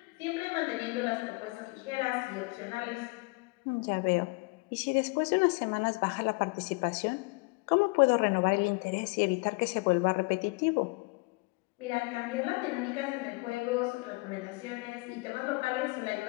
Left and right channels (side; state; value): right; quieter; 28.1 dB